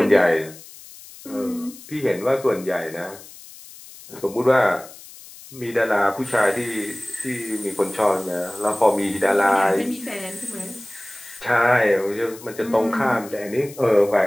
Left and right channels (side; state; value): left; noise; hiss, 18 dB below the sound